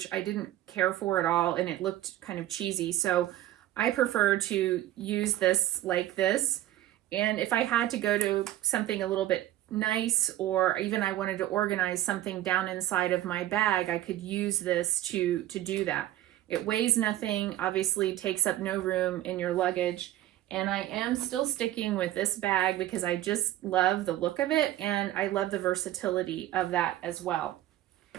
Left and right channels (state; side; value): quieter; left; 14.1 dB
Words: I didn't care for at all, and it looked kind of cheesy. So I prefer to use this like this. And if I had to go to something a little bit nice, or even I wanted to organize something down inside of my bag, I could use this to do that. It weighs nothing, obviously takes up no room in your luggage. And I am still sticking with this bag because I just love the look of it, and I love the versatility of that as well.